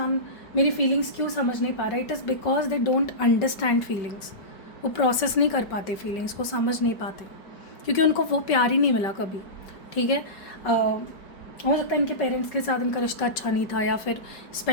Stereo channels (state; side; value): late; right; 5.3 ms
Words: मेरी फीलिंग्स क्यों समझ नहीं पा रहा है, it is because they don't understand feelings. वो प्रोसेस नहीं कर पाते फीलिंग्स को, समझ नहीं पाते, क्योंकि उनको वो प्यार ही नहीं मिला कभी। ठीक है, हो सकता है इनके पेरेंट्स के साथ इनका रिश्ता अच्छा नहीं था, या फिर